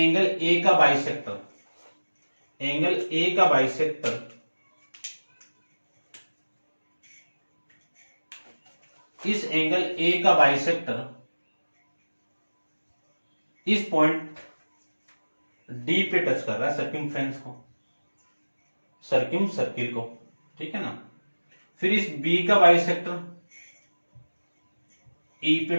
A का बाइसेक्टर, एंगल A का बाइसेक्टर इस एंगल A का बाइसेक्टर इस पॉइंट D पे टच कर रहा है, सर्कमफ्रेंस को, सर्किम सर्किल को, ठीक है ना। फिर इस B का बाइसेक्टर E पे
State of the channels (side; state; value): both; inverted; correlation -1.00